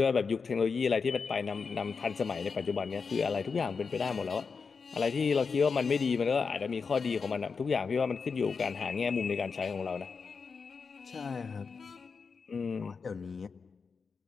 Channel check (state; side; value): quieter; right; 5.2 dB